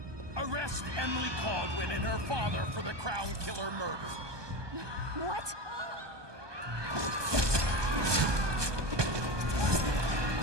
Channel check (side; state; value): left; late; 1.2 ms